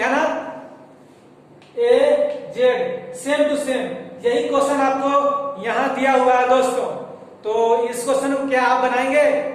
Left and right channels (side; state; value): both; identical; correlation 1.00